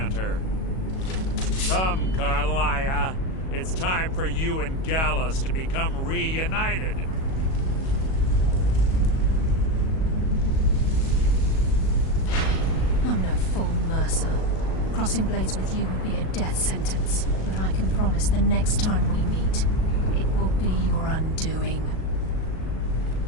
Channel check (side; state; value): right; late; 37 ms